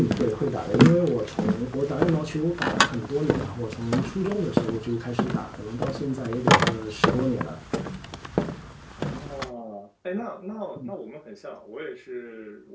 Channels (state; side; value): identical; both; correlation 1.00